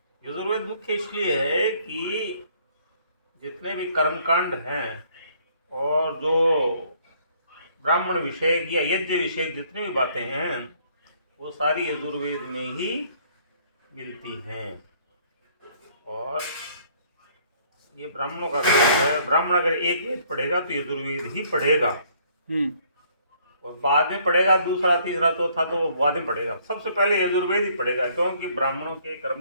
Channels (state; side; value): inverted; both; correlation -0.63